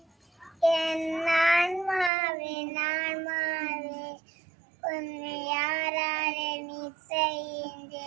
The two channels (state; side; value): drops out; left; at 2.1 s